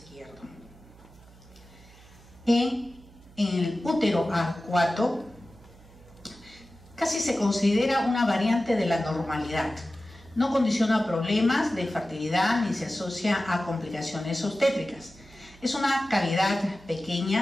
En el útero arcuato casi se considera una variante de la normalidad. No condiciona problemas de fertilidad ni se asocia a complicaciones obstétricas. Es una cavidad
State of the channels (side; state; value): right; noise; hum, 23 dB below the sound